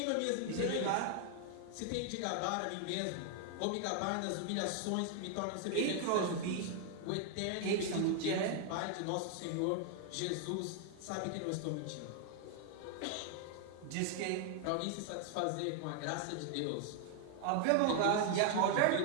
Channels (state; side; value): different; both; correlation 0.00